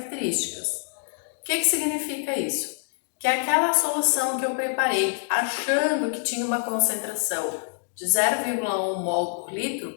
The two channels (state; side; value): silent; right; digital silence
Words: O que significa isso? Que aquela solução que eu preparei achando que tinha uma concentração de 0,1 mol por litro,